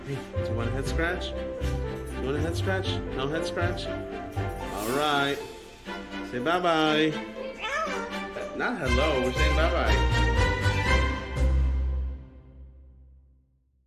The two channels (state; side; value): identical; both; correlation 1.00